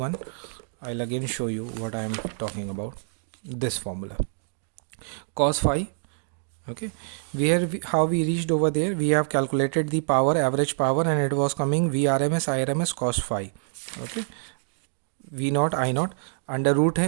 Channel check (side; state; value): left; silent; digital silence